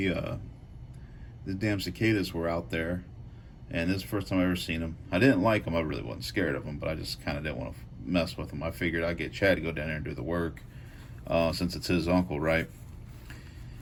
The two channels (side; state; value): both; identical; correlation 1.00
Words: damn cicadas were out there, and this is the first time I ever seen them. I didn't like them. I really wasn't scared of them, but I just kind of didn't want to mess with them. I figured I'd get Chad to go down there and do the work, since it's his uncle, right?